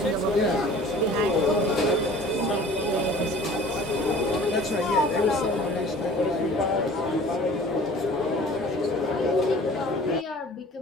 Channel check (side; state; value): both; normal; correlation 0.47